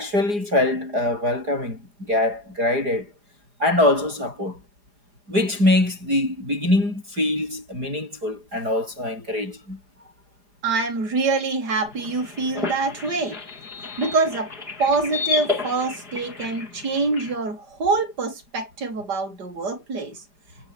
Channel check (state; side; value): late; left; 4.8 ms